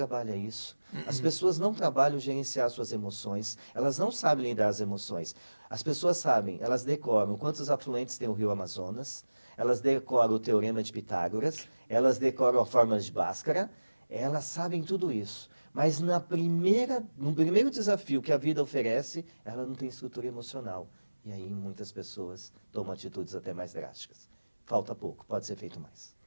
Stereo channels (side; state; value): both; inverted; correlation -1.00